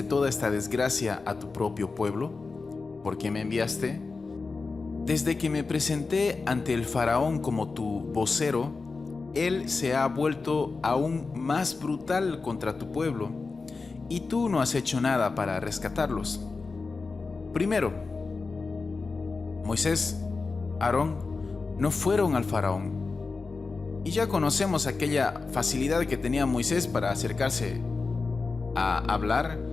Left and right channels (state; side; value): quieter; right; 4.2 dB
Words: toda esta desgracia a tu propio pueblo? ¿Por qué me enviaste? Desde que me presenté ante el faraón como tu vocero, él se ha vuelto aún más brutal contra tu pueblo, y tú no has hecho nada para rescatarlos. Primero, Moisés, Aarón no fueron al faraón. Y ya conocemos aquella facilidad que tenía Moisés para acercarse a hablar